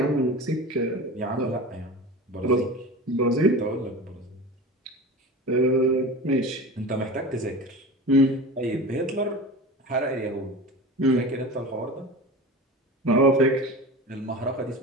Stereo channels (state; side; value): normal; both; correlation 0.32